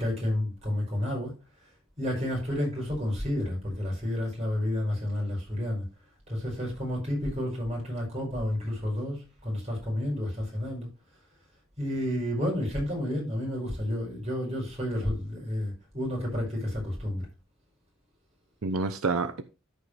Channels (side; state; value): both; normal; correlation 0.77